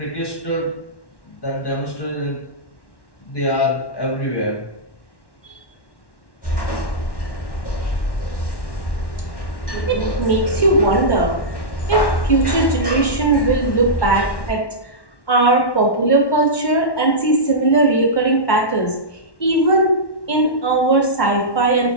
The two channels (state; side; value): late; right; 1.1 ms